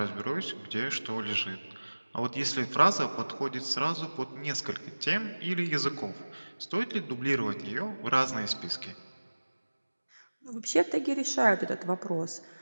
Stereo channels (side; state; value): both; inverted; correlation -1.00